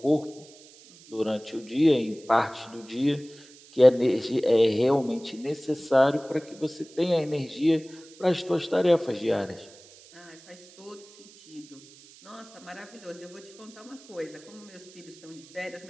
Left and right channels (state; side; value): noise; right; hiss, 23 dB below the sound